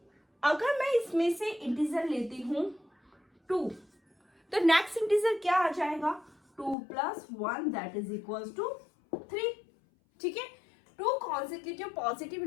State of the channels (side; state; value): right; drops out; at 6.8 s